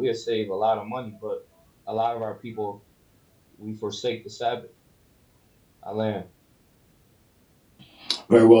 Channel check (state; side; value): identical; both; correlation 1.00